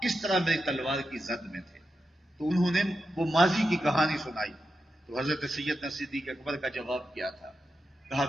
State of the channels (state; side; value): normal; both; correlation 0.89